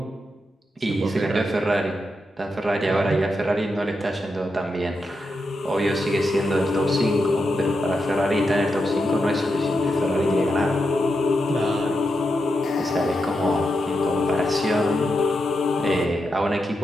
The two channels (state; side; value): normal; both; correlation 0.86